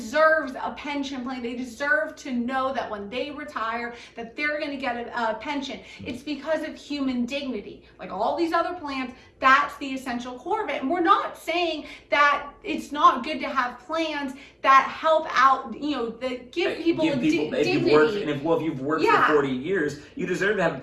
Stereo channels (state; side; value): identical; both; correlation 1.00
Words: a pension plan. They deserve to know that when they retire, that they're going to get a pension. It's because of human dignity. Like all these other plans, that's the essential core of it. And we're not saying that it's not good to have plans that help out, that give people dignity. If you've worked for 40 years, you deserve to have a